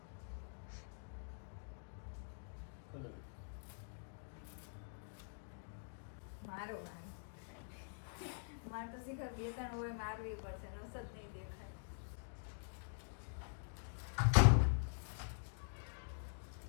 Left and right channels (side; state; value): right; silent; digital silence